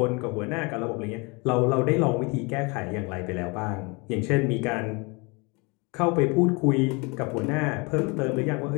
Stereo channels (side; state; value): right; quieter; 28.9 dB